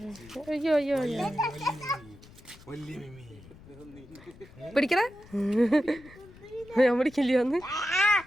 അയ്യോ അയ്യോ പിടിക്കണ ഞാൻ പിടിക്കില്ല ഒന്ന്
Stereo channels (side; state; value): left; noise; rumble, 22 dB below the sound